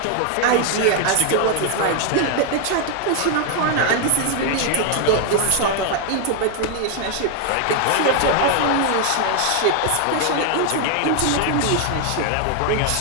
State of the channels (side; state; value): both; different; correlation 0.00